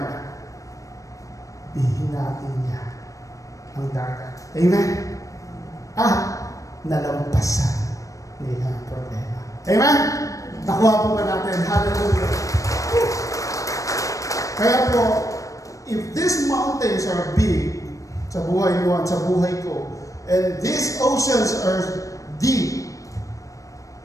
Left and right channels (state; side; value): late; right; 0.16 ms